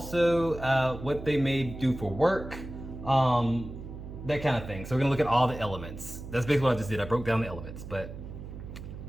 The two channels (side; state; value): right; noise; hum, 11 dB below the sound